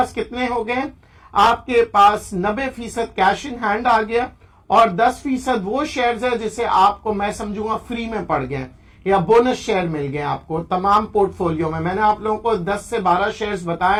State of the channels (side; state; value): both; identical; correlation 1.00